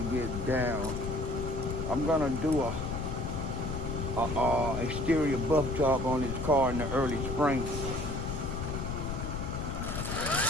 get down. I'm gonna do a exterior buff job on his car in the early spring.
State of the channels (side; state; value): left; noise; rumble, 4 dB below the sound